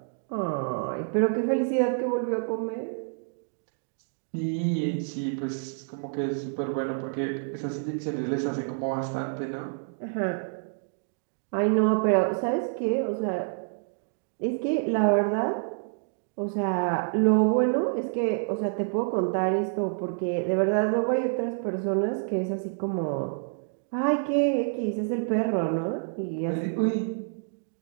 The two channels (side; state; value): left; silent; digital silence